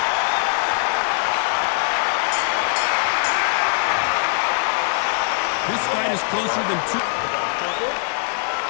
This fight is closer than two.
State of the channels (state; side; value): silent; right; 58 dB below the other